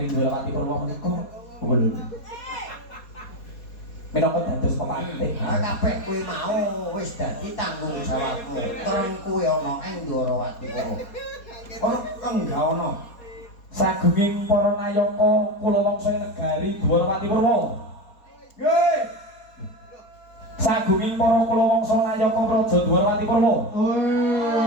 Dwarawati Purwa menika. Kula minangka dados pemantih. Ha kabeh kuwi mau wis dadi tanggung jawabmu. Terus kuwi ana ing Dwarawati Purwa. Ono enggak ono. Sagunging para nayaka kula wangsa negari Dwarawati Purwa. Nggih. Sagunging para kula wangsa nayaka praja Dwarawati Purwa.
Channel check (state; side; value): late; right; 4.2 ms